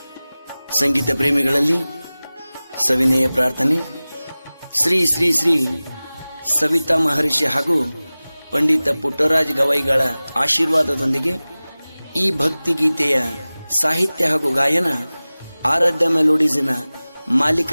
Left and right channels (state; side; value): inverted; both; correlation -0.98